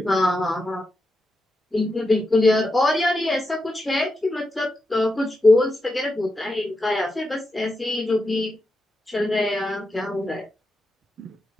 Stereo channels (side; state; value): both; normal; correlation 0.87